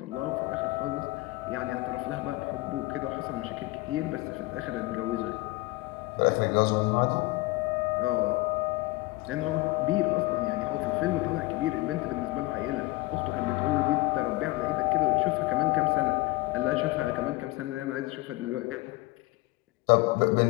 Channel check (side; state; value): right; quieter; 20.9 dB